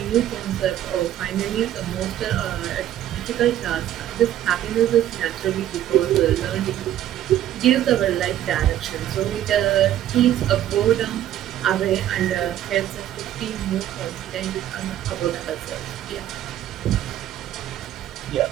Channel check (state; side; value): quieter; left; 12.1 dB